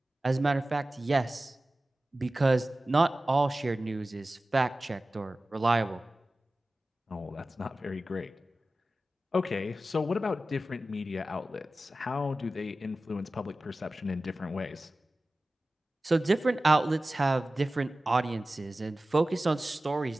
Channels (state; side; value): normal; both; correlation 0.96